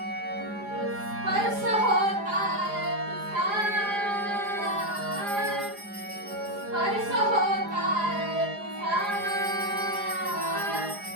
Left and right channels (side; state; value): left; late; 4.9 ms